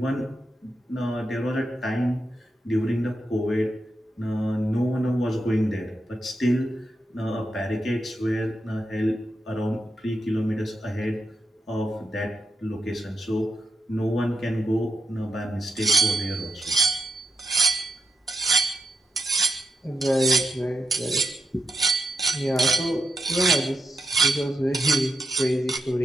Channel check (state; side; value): normal; both; correlation 0.84